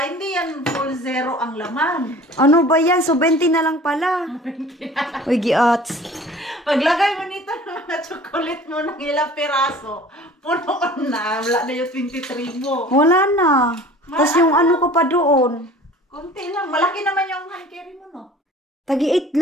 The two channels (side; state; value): both; normal; correlation 0.45